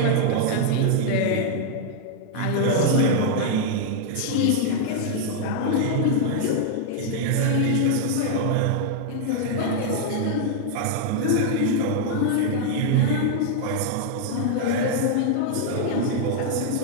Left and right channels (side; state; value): both; different; correlation -0.01